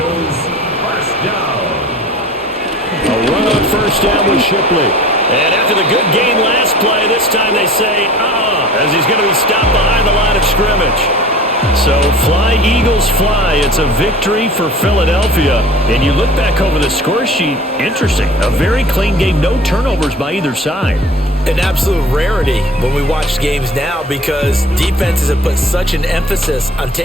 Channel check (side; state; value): both; normal; correlation 0.43